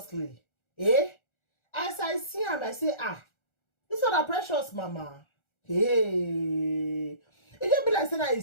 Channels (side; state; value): right; late; 1.4 ms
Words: As I see am, I say, this one a Precious mama. Hey. It just be like saying a